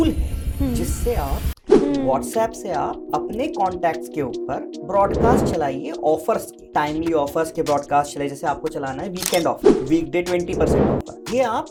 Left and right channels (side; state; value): both; identical; correlation 1.00